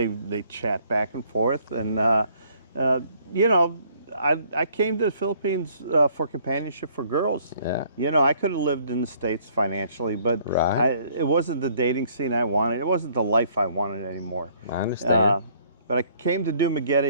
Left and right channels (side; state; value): both; inverted; correlation -0.62